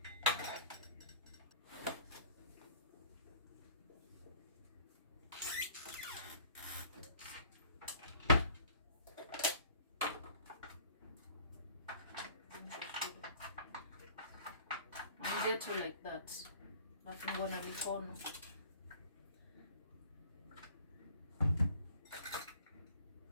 Ghetto like that. Nafungwa na mikono.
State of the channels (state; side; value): inverted; both; correlation -0.52